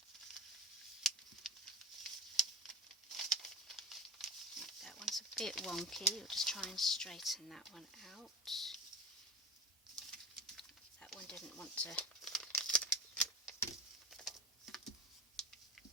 That one's a bit wonky. We'll just try and straighten that one out. That one didn't want to.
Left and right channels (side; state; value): both; normal; correlation 0.31